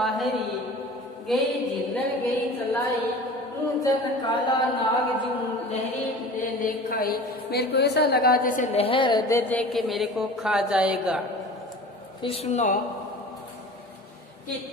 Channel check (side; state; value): both; normal; correlation 0.39